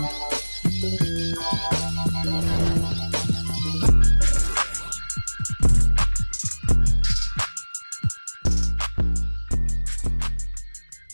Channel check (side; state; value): both; inverted; correlation -1.00